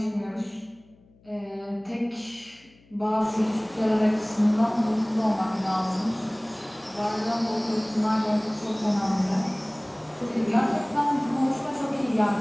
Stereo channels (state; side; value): noise; left; hum, 29 dB below the sound